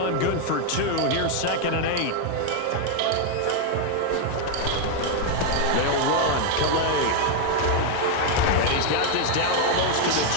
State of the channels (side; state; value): both; different; correlation 0.01